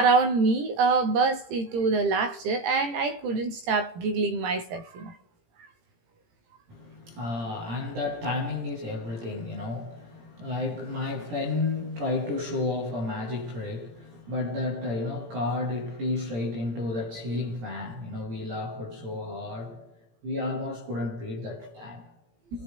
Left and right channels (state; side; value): late; left; 17 ms